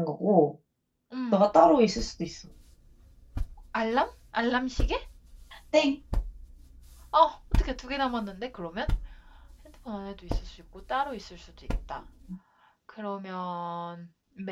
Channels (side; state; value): both; identical; correlation 1.00